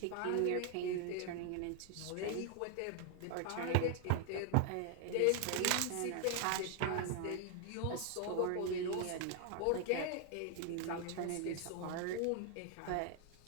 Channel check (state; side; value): different; both; correlation 0.00